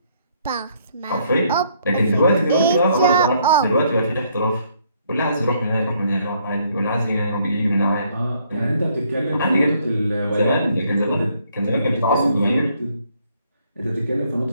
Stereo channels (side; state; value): both; inverted; correlation -0.68